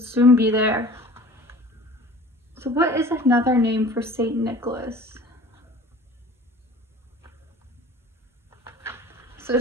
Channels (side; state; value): both; normal; correlation 0.44